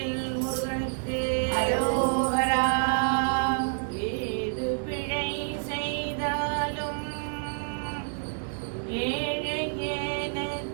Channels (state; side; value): silent; left; digital silence